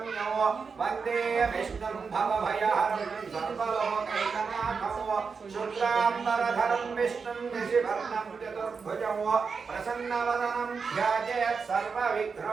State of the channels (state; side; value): quieter; left; 5.3 dB